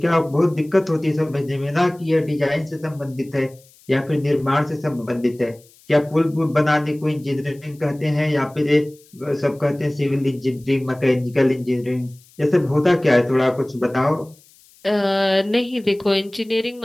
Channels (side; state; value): left; noise; hiss, 28 dB below the sound